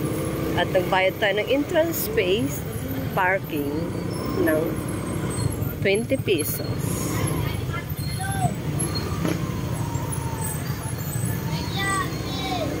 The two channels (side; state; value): both; identical; correlation 1.00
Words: At nagbayad tayo ng entrance space, parking ng 20 pesos.